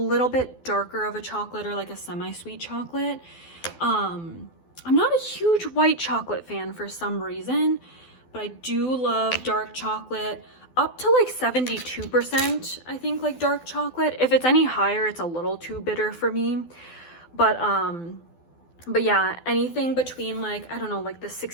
bit darker of a chocolate, or like a semi-sweet chocolate. I'm not a huge white chocolate fan for some reason, but I do love dark chocolate. Up to like 72%, I think, like dark chocolate. If it's any higher, it's a little too bitter for me. But yeah, anything between like, I don't know, like the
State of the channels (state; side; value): late; right; 12 ms